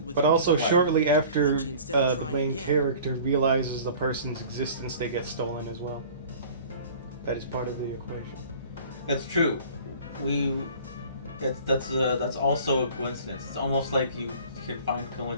with but Yuki's also Right. shortly after Kanji instead of the trying main again. character realizes the person's existence, they get stolen as well. That is part of the equation. It's true. That's also a coincidence. It's almost like you can find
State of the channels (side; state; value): both; inverted; correlation -0.46